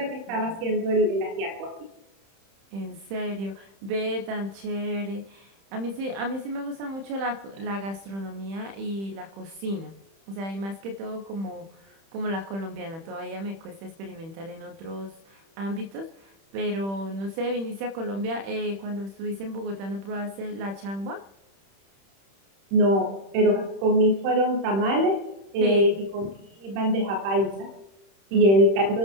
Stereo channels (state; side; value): late; left; 31 ms